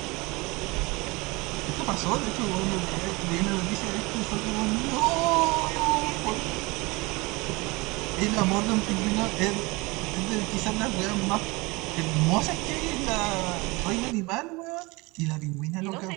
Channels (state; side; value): quieter; left; 24.6 dB